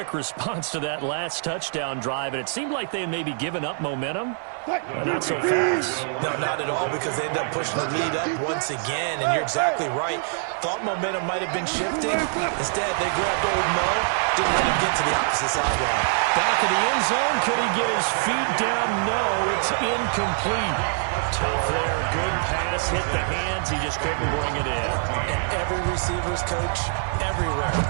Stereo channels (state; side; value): silent; left; 59 dB below the other